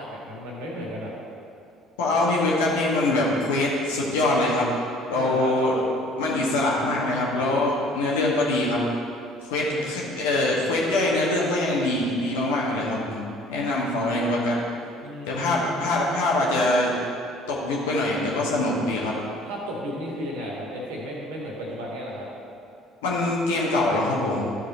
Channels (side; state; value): both; normal; correlation 0.52